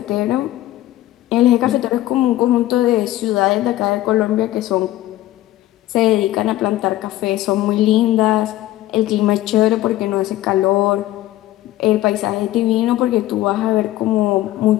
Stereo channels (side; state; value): right; quieter; 15.1 dB